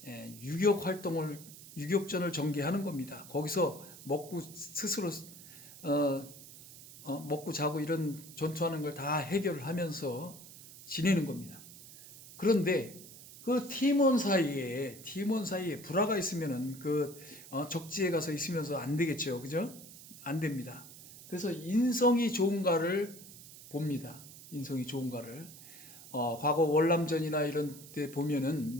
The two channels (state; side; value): noise; right; hiss, 17 dB below the sound